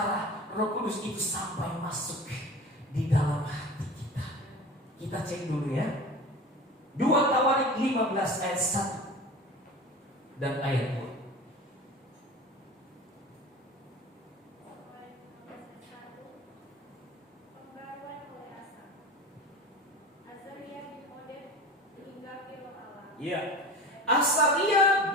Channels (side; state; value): both; normal; correlation 0.35